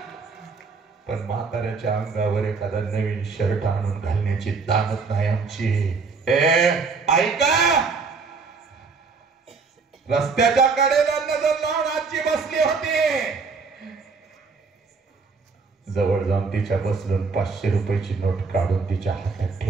पण म्हाताऱ्याच्या अंगावर एखादा नवीन शर्ट आणून घालण्याची दानत नाही आमची. ऐका, रस्त्याच्या कडेला नजर लावून आजी बसली होती. जवळ जाऊन तिच्या बसलून 500 रुपयाची नोट काढून तिच्या हातात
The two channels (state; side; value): quieter; left; 4.7 dB